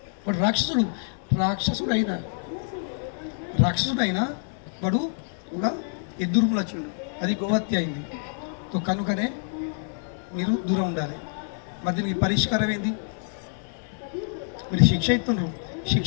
వాడు రాక్షసుడు అయినా వాడు ఒక ఎద్దు రూపంలో వచ్చిండు, అది గోహత్య అయింది. కనుకనే మీరు దూరం ఉండాలి. మరి దీనికి పరిష్కారం ఏంది? మీరు శిక్ష ఇస్తున్నారు,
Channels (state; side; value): silent; right; 60 dB below the other